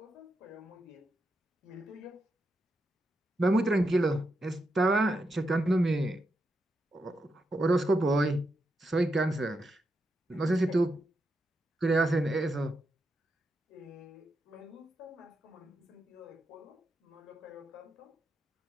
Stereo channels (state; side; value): normal; both; correlation 0.85